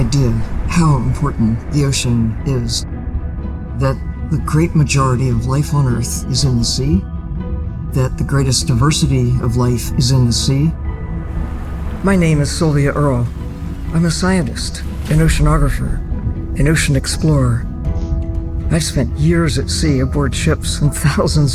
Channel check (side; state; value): both; identical; correlation 1.00